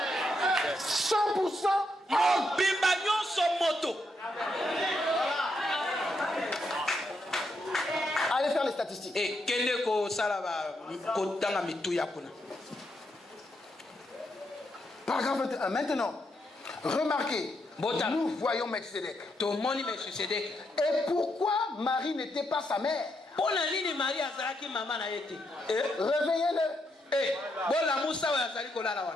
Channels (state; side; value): normal; both; correlation 0.80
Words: 100% homme. Allez faire les statistiques. Paragraphe 21. Maintenant, remarquez, nous voyons Melchizedek. Et pourquoi Marie n'était pas sa mère? Réveillez-le.